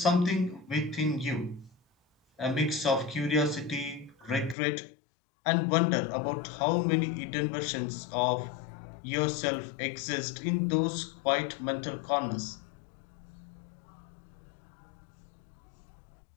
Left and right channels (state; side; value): drops out; right; at 4.5 s